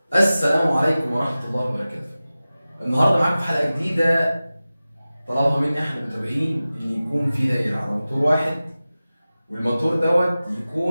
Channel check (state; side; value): inverted; both; correlation -0.96